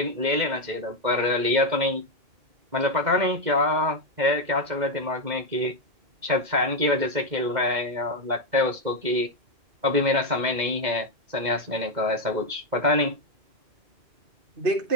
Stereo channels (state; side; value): late; left; 2.1 ms